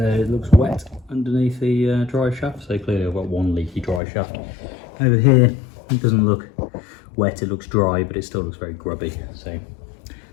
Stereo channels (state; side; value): drops out; right; at 4.0 s